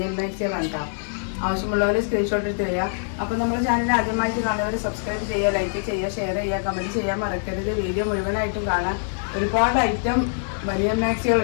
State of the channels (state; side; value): silent; right; digital silence